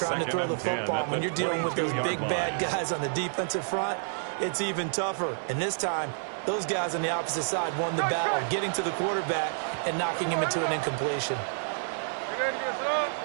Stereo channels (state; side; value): silent; left; digital silence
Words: to throw the football. When you're dealing with those big bad guys on the defensive front, it's even tougher. And this time, those guys on the opposite side won the battle, getting to the quarterback and knocking him into an incompletion.